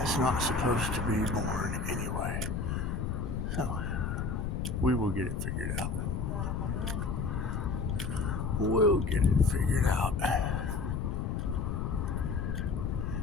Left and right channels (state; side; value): noise; left; rumble, 1 dB below the sound